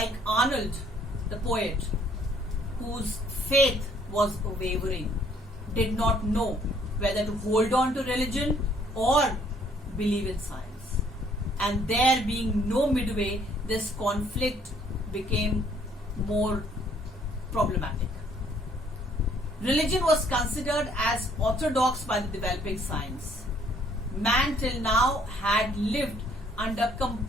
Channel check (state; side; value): normal; both; correlation 0.63